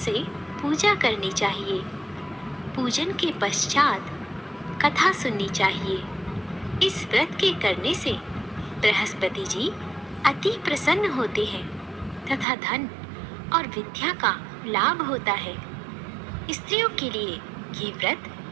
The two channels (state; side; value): drops out; left; at 12.5 s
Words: पूजा करनी चाहिए। पूजन के पश्चात कथा सुननी चाहिए। इस व्रत के करने से बृहस्पति जी अति प्रसन्न होते हैं तथा धन और विद्या का लाभ होता है। स्त्रियों के लिए ये व्रत